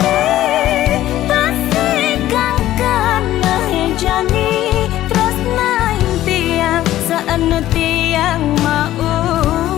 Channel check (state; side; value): quieter; right; 13.9 dB